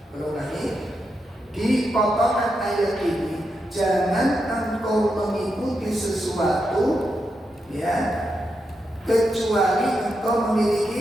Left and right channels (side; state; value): both; normal; correlation 0.85